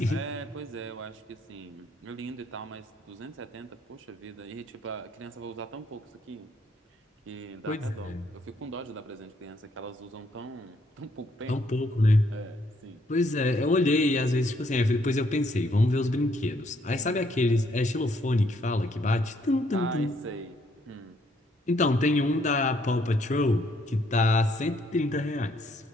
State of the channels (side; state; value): both; normal; correlation 0.69